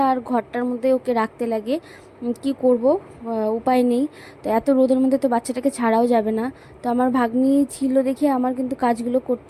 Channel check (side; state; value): both; identical; correlation 1.00